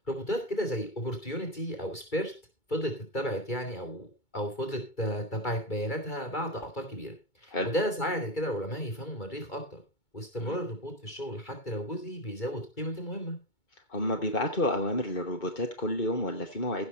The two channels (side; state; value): right; late; 2.2 ms